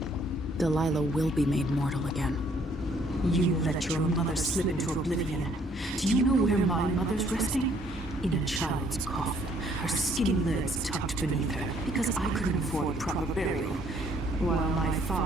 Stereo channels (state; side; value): normal; both; correlation 0.64